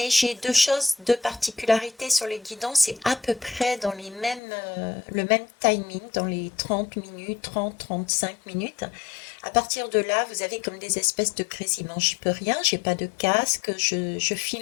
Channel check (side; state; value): right; drops out; at 4.4 s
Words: j'ai deux choses, deux particularités sur les guidons, c'est à peu près dans les mêmes, le même timing, dans les 30 minutes, 30-35 minutes. À partir de là, vous avez comme des espèces de grésillements. J'y peux rien, j'ai pas de casque, je